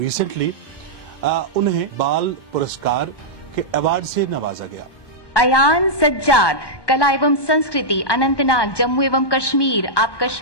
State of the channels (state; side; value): late; right; 1.2 ms